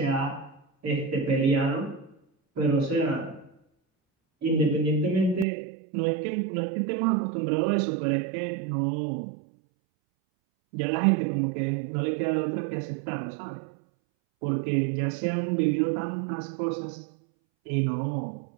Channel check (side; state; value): left; drops out; at 5.5 s